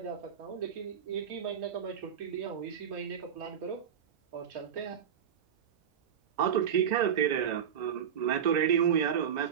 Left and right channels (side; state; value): left; quieter; 8.4 dB